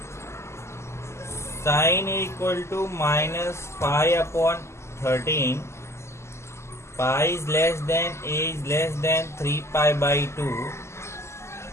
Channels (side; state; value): right; late; 0.13 ms